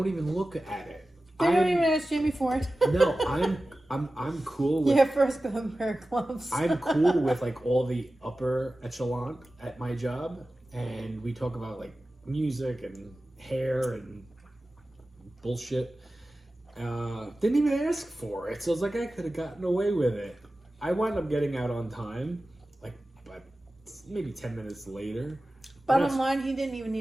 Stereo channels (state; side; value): normal; both; correlation 0.95